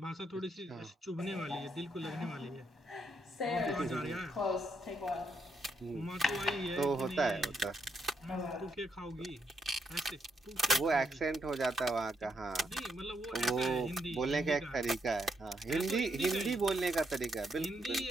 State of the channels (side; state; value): both; normal; correlation 0.78